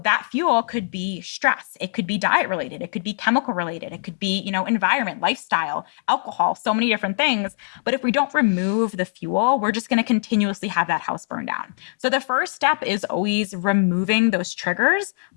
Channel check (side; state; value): right; silent; digital silence